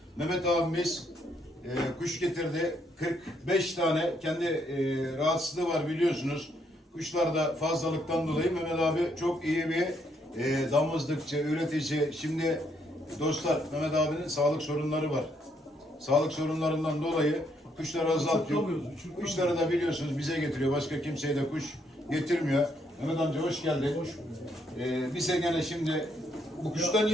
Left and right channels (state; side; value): normal; both; correlation 0.73